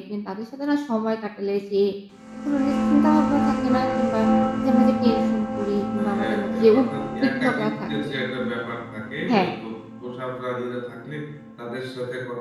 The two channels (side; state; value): both; identical; correlation 1.00